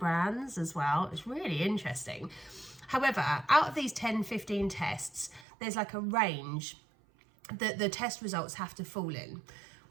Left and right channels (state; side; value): drops out; left; at 5.5 s